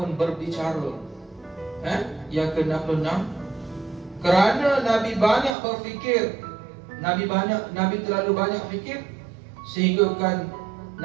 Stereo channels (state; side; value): drops out; left; at 5.6 s